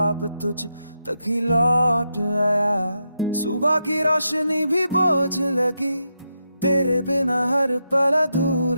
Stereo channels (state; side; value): inverted; both; correlation -0.85